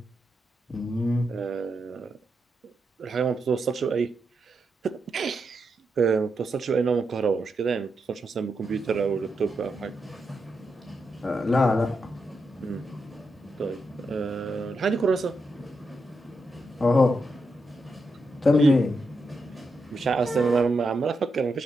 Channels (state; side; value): normal; both; correlation 0.84